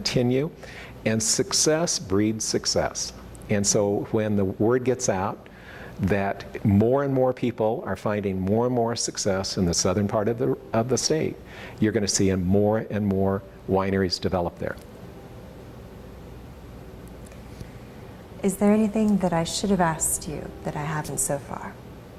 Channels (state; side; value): identical; both; correlation 1.00